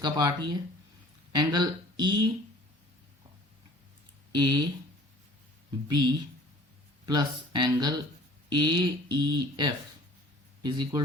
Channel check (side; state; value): both; normal; correlation 0.49